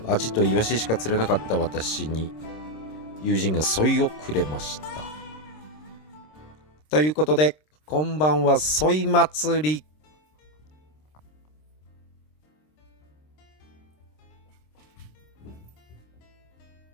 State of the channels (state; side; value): late; right; 26 ms